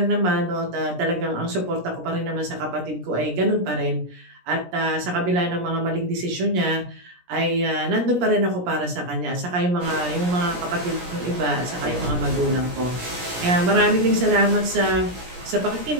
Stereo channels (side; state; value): left; late; 17 ms